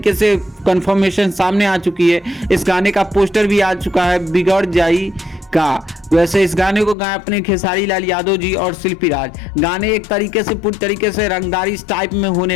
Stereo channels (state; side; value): drops out; right; at 7.0 s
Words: से कंफर्मेशन सामने आ चुकी है। इस गाने का पोस्टर भी आ चुका है बिगड़ जाई का। वैसे इस गाने को गाए अपने खेसारी लाल यादव जी और शिल्पी राज। गाने एक तरीके से पूरी तरीके से रंगदारी टाइप में